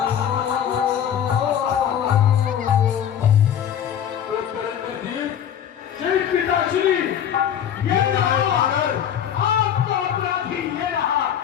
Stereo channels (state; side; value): quieter; right; 9.4 dB